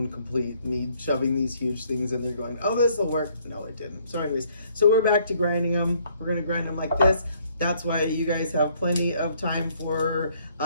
complete me shoving these huge things in there going, oh, this will work. No, it didn't. So anyways, so we're back to grinding them. We're gonna grind them like this. That's why you guys have plenty of time for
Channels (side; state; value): both; inverted; correlation -0.65